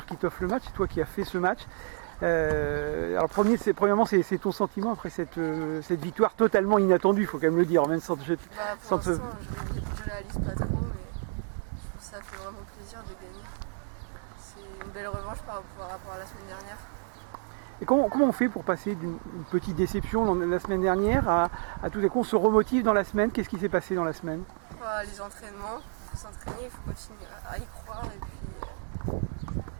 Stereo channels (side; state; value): left; silent; 58 dB below the other